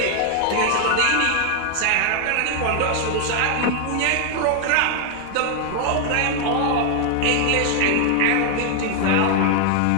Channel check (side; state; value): both; different; correlation 0.00